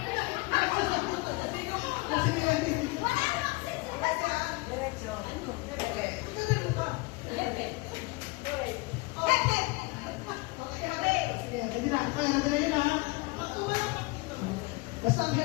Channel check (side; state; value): right; quieter; 24.3 dB